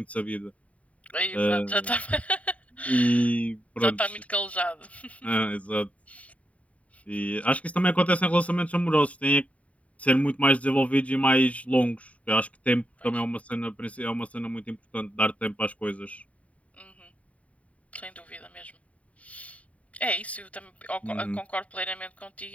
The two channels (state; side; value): late; right; 0.067 ms